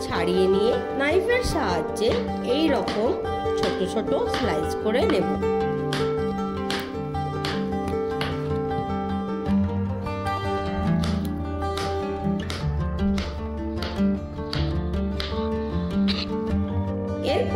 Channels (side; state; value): both; identical; correlation 1.00